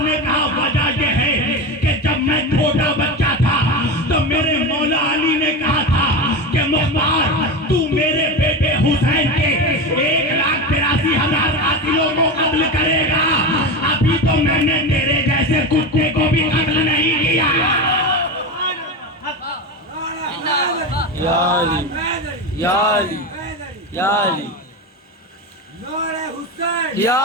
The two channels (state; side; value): normal; both; correlation 0.21